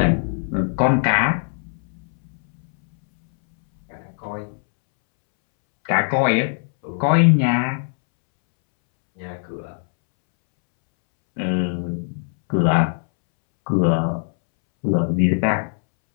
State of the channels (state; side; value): silent; right; 65 dB below the other